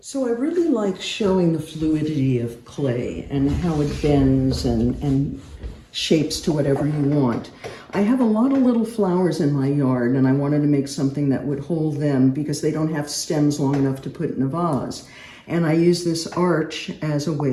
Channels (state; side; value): identical; both; correlation 1.00